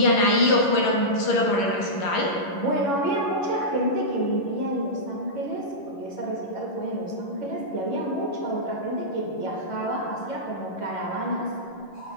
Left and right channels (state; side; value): late; right; 11 ms